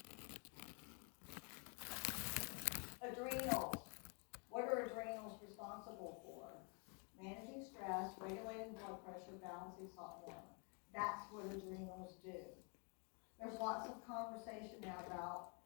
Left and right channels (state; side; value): quieter; right; 36.7 dB